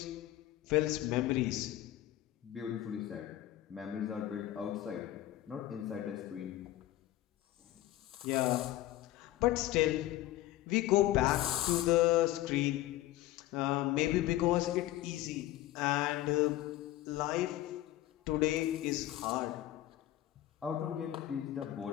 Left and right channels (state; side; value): quieter; right; 14.8 dB